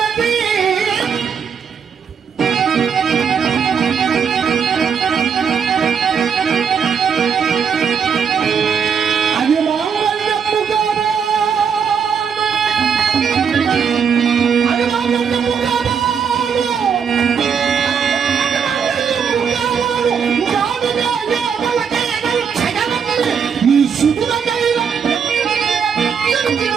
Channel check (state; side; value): quieter; left; 6.8 dB